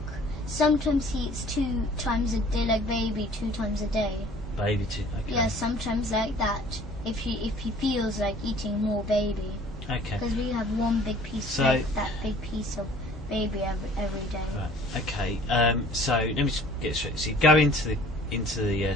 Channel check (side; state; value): both; normal; correlation 0.51